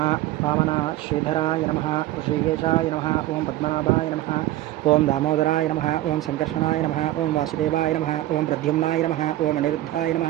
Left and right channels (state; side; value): quieter; left; 15.4 dB